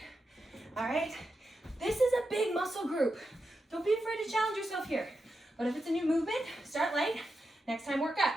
All right? This is a big muscle group. Don't be afraid to challenge yourself here. But if it's a new movement, start light, Next time, work up.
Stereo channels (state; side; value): normal; both; correlation 0.88